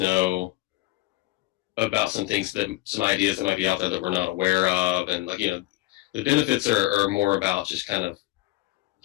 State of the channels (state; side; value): quieter; right; 18.5 dB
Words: about some things some ideas that might be out there that we're not aware of. And like, you know, the benefits are more about just kind of